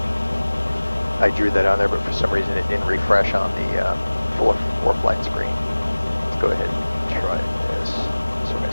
I drew that on there, but for some reason it didn't refresh on the four flight screen. Let's go ahead and try this. So we're going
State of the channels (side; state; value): both; inverted; correlation -1.00